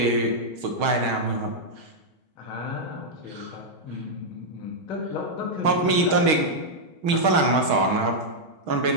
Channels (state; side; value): late; left; 6.4 ms